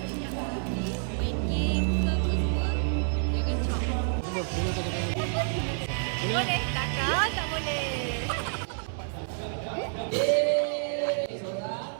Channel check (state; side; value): silent; left; digital silence